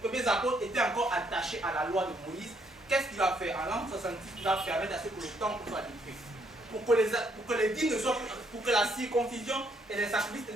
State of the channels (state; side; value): normal; both; correlation 0.71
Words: premiers apôtres étaient encore attachés à la loi de Moïse, qu'est-ce qu'il va faire? En l'an 66, il va permettre à ce que le temple soit détruit. Pour que les dîmes ne soient plus, pour que la circoncision et les sacrifices